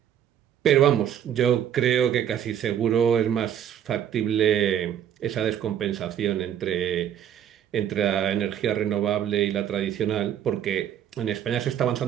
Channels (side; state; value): left; quieter; 9.8 dB